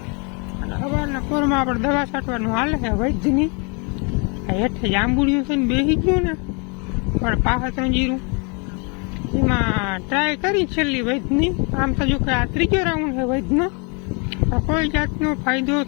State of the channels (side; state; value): right; quieter; 34.0 dB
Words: અને સવારના પોરમાં આપણે દવા છાંટવાનું હાલે છે વૈદ્યની. હેઠે જાંબુડિયું છે ને બેસી ગયું ને પણ પાછા જીરું એમાં ટ્રાય કરી છેલ્લી વૈદ્યની. આમ તો જો કે આ ત્રીજો રાઉન્ડ છે વૈદ્યનો, કોઈ જાતનો ફાયદો